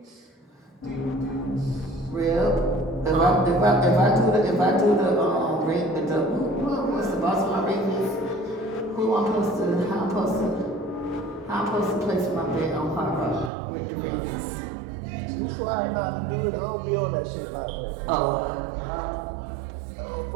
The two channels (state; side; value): drops out; left; at 13.5 s